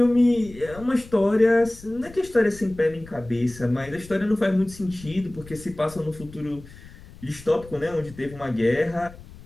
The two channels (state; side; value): noise; left; rumble, 19 dB below the sound